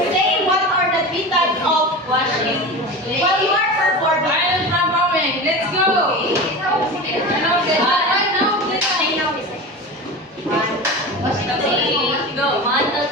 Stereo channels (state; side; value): normal; both; correlation 0.29